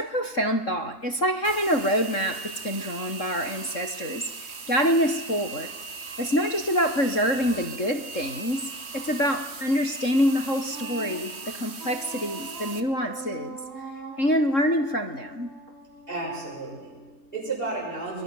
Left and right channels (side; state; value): right; late; 3.2 ms